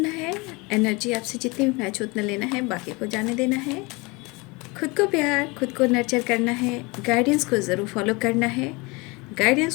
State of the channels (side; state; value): right; quieter; 26.1 dB